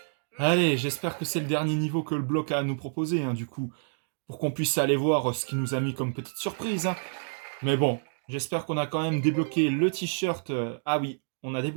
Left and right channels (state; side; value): silent; left; digital silence